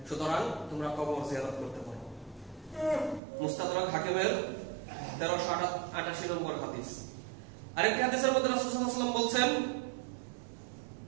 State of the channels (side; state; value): left; drops out; at 3.2 s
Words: সুতরাং তোমরা কবর জিয়ারত করতে পারো। মুস্তাদরাক হাকিমের 1388 নম্বর হাদিস। আরেকটি হাদিসের মধ্যে রাসূল সাল্লাল্লাহু আলাইহি ওয়াসাল্লাম বলছেন,